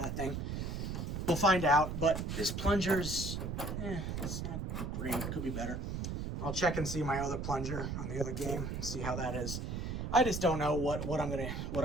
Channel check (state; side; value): noise; right; rumble, 3 dB below the sound